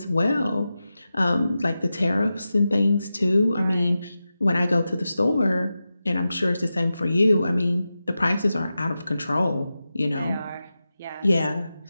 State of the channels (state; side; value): inverted; both; correlation -0.92